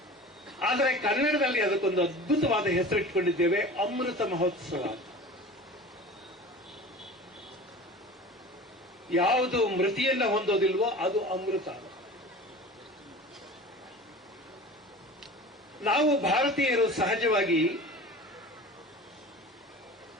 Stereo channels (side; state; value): both; normal; correlation 0.38